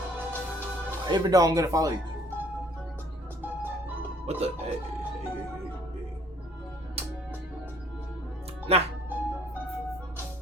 Even though I'm gonna follow you. What the? Hey. Nah.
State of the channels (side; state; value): both; normal; correlation 0.59